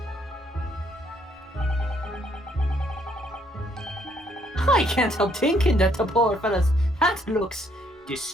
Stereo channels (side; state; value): both; normal; correlation 0.69